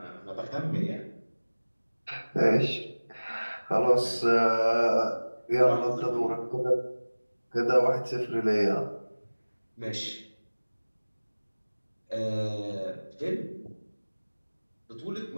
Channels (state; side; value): inverted; both; correlation -1.00